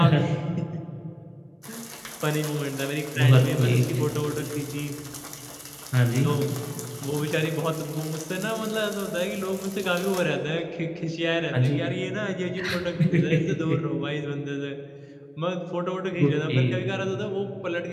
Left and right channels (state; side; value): identical; both; correlation 1.00